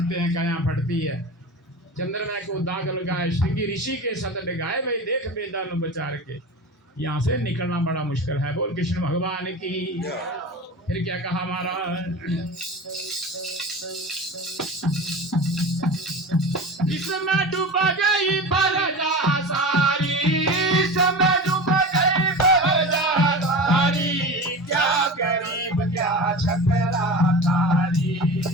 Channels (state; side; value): normal; both; correlation 0.31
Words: हैं, काया फटती है। चंद्रमा को दाग लगाए, श्रृंगी ऋषि के सत लगाए, भाई देख बेदानु बचार के। यहाँ से निकलना बड़ा मुश्किल है। बोल कृष्ण भगवान की। फिर क्या कहा महाराज, इसमें डूब गई प्रजा सारी, इसमें डूब गई प्रजा सारी, क्या गरीब क्या छतरा तारी,